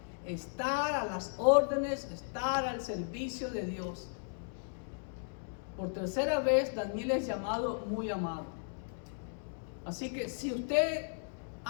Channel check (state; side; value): silent; right; digital silence